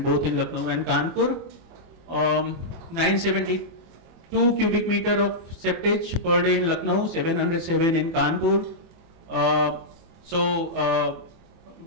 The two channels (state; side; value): late; left; 24 ms